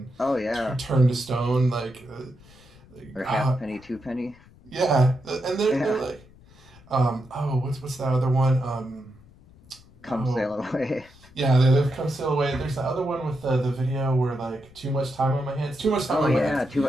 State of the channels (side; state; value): left; noise; rumble, 25 dB below the sound